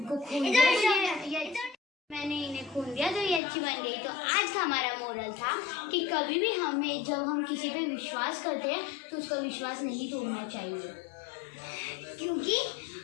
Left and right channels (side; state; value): right; drops out; at 3.4 s